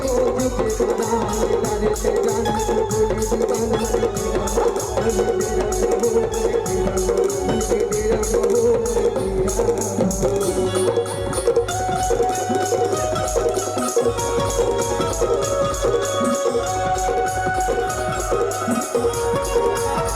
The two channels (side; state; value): both; identical; correlation 1.00